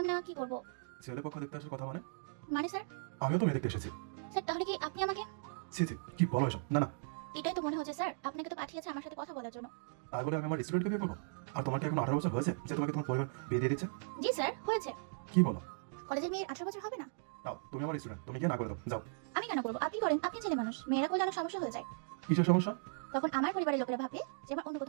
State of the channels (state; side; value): silent; left; digital silence